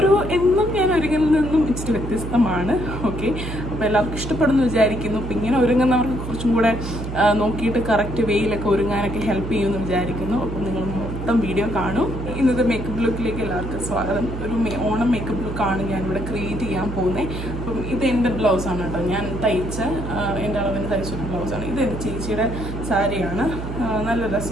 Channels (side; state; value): right; noise; hum, 6 dB below the sound